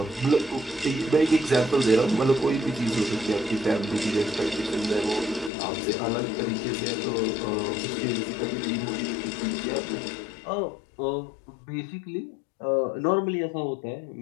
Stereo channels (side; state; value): right; drops out; at 5.5 s